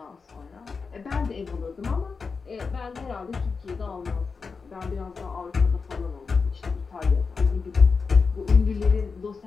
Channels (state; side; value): quieter; right; 4.9 dB